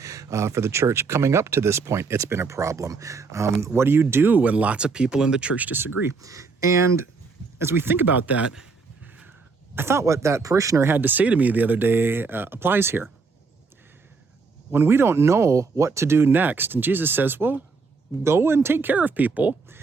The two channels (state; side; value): quieter; left; 4.6 dB